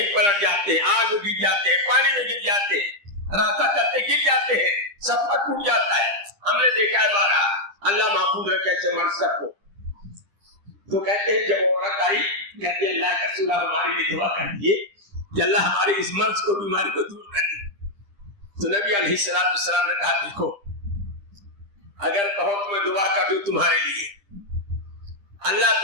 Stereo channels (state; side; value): late; left; 10 ms